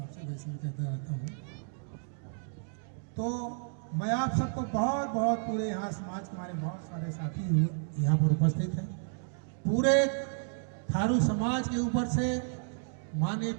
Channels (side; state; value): left; silent; digital silence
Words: वैसे भी कहता रहता हूँ। तो मैं आप सबको बहुत बहुत, पूरे यहाँ समाज के हमारे बहुत सारे साथी यहाँ पर उपस्थित हैं, पूरे थारू समाज के ऊपर से माननीय